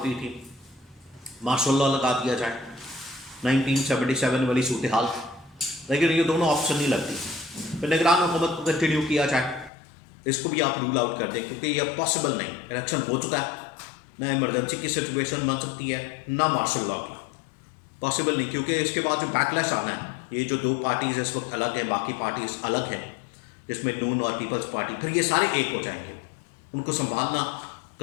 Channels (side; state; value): right; drops out; at 9.7 s